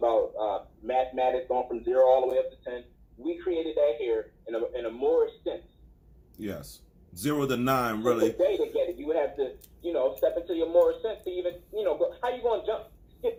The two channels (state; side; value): identical; both; correlation 1.00